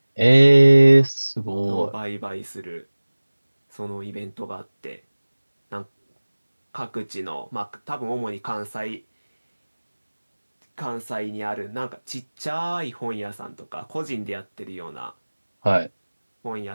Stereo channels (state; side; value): inverted; both; correlation -1.00